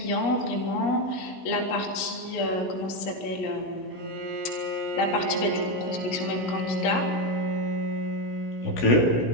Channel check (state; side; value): late; right; 17 ms